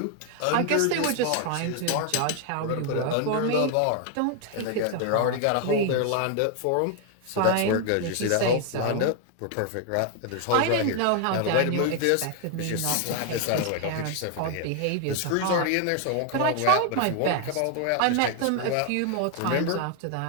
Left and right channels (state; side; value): different; both; correlation 0.00